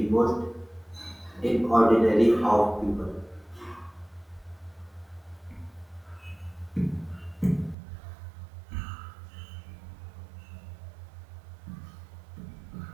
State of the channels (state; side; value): drops out; left; at 7.8 s